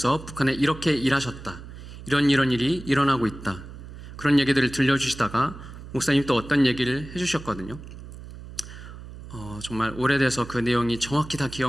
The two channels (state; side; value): noise; right; hum, 14 dB below the sound